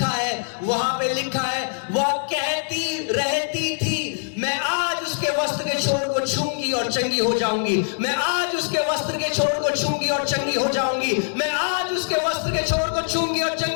है वहां पे लिखा है, वह कहती रहती थी, मैं आज उसके वस्त्र के छोर को छूंगी और चंगी हो जाऊंगी, मैं आज उसके वस्त्र के छोर को छूंगी और चंगी हो जाऊंगी, मैं आज उसके वस्त्र के छोर को छूंगी और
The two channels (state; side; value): silent; right; digital silence